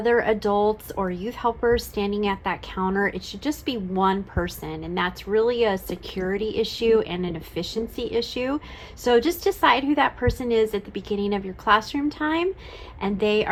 adults or youth helpers standing at that counter. It should just be one person, and that's really a security issue and an efficiency issue. So just decide who that person is at the beginning of your classroom time, and they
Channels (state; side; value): identical; both; correlation 1.00